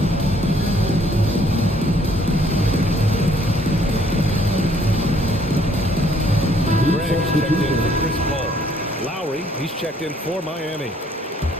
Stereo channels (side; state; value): both; normal; correlation 0.64